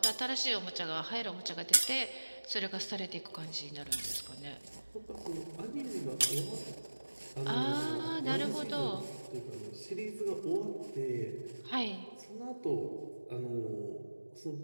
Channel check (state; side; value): inverted; both; correlation -1.00